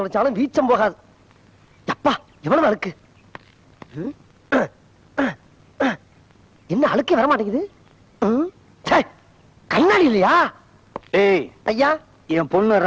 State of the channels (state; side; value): identical; both; correlation 1.00